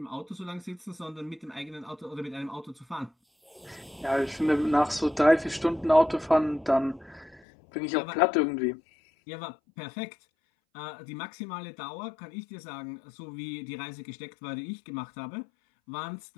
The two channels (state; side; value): drops out; right; at 7.4 s